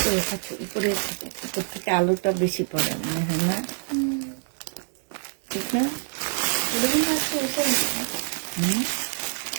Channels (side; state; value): left; silent; 61 dB below the other